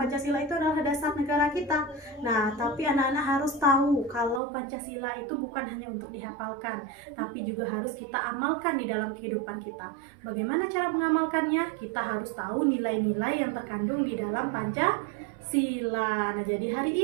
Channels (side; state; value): left; drops out; at 4.4 s